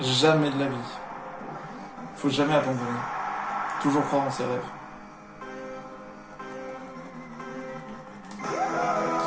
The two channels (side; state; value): both; identical; correlation 1.00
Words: Jamais de la vie. Faut jamais abandonner. Toujours croire en ses rêves.